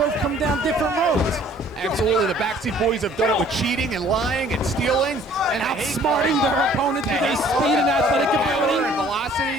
come down different roads. Absolutely, the Backseat Boys have done it with cheating and lying and stealing. And outsmarting their opponents with their speed and athletic ability. And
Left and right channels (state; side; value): normal; both; correlation 0.56